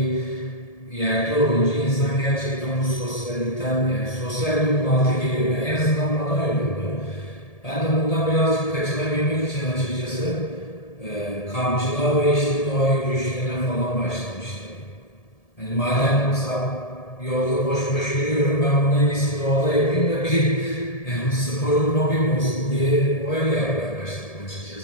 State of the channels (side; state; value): right; late; 1.7 ms